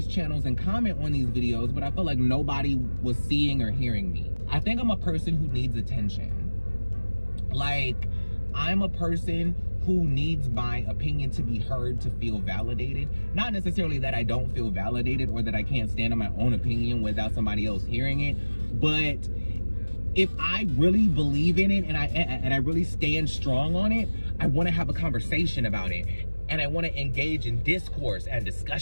channels and comment on these videos, but I felt like nobody was seeing or hearing me. I think I'm a person who needs attention. Like, I'm a person who needs my opinion to be heard, to feel validated. Not necessarily that I don't feel validated or that I can't stand on my own opinion without somebody else hearing it, but if I really believe in it and I really stand strong on it, I want to have a conversation about it, and I want to engage in discourse and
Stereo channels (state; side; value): inverted; both; correlation -1.00